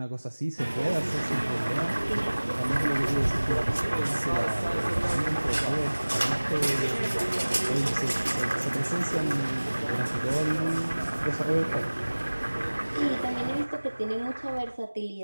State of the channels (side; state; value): both; inverted; correlation -1.00